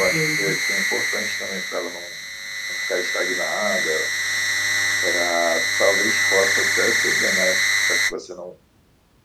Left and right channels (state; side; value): identical; both; correlation 1.00